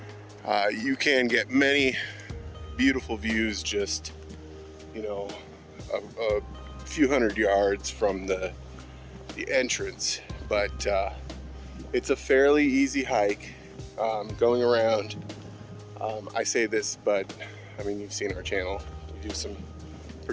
miles, you can get many beautiful views just, you know, a few hundred yards from the entrance. But it's a fairly easy hike going around. I say this, but I mean, you've seen our channel. We do some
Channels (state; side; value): identical; both; correlation 1.00